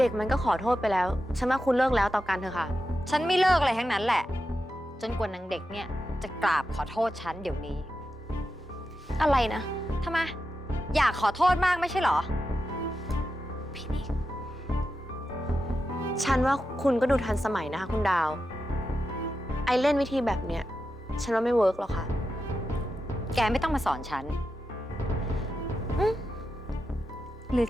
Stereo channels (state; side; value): normal; both; correlation 0.89